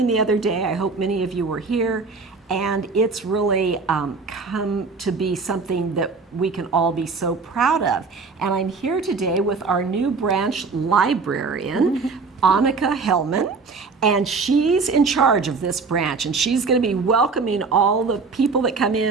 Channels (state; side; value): quieter; left; 4.5 dB